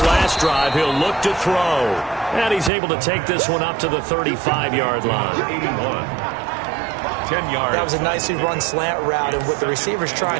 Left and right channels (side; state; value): left; drops out; at 2.7 s